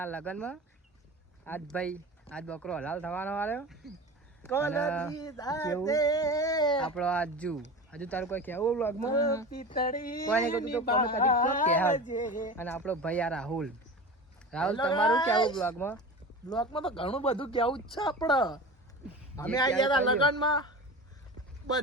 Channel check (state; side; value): normal; both; correlation 0.32